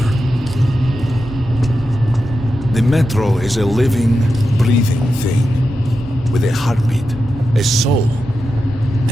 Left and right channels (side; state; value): both; normal; correlation 0.89